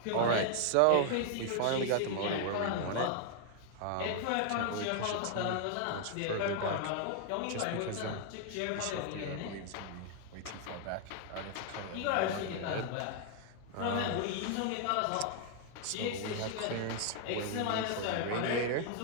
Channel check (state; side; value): different; both; correlation 0.00